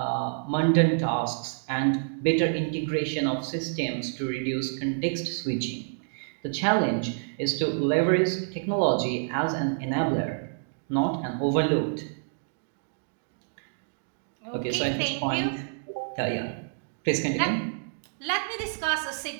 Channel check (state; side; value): silent; left; digital silence